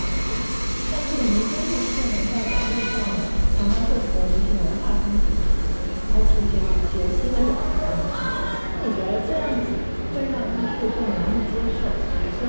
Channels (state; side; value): inverted; both; correlation -1.00